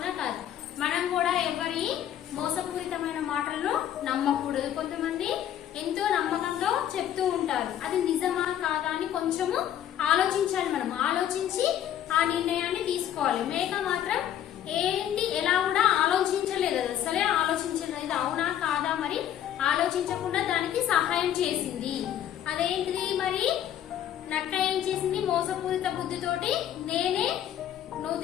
కాదు? మనం కూడా ఎవరి మోసపూరితమైన మాటలను నమ్మకూడదు. కొంతమంది ఎంతో నమ్మకంలో చెప్తూ ఉంటారు, అది నిజమా కాదా అని కొంచెము ఆలోచించాలి. మనం ఆలోచించి ఆ నిర్ణయాన్ని తీసుకోవాలి. మేక మాత్రం ఏంటి ఎలా కూడా ఆలోచించలేదు, అసలే ఆలోచించలేదు. ఇది అవునా కాదా మరి ఆలోచించకుండా దానికి సహాయం చేసింది. అదేంటిది మరి? నక్క ఏం చేసింది? మోసపూరిత బుద్ధితోటి నేనే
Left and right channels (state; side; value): quieter; right; 10.8 dB